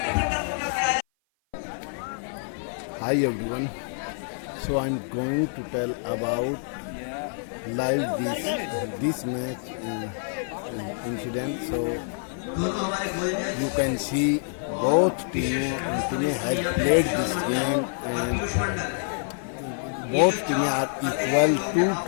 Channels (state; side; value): silent; right; 55 dB below the other